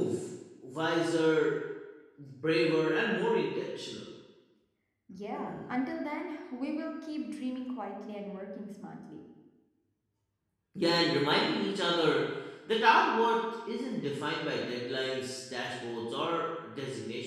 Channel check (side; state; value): both; identical; correlation 1.00